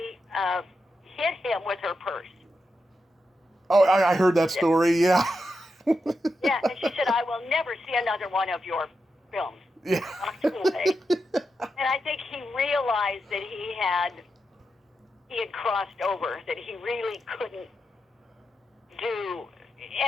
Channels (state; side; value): normal; both; correlation 0.87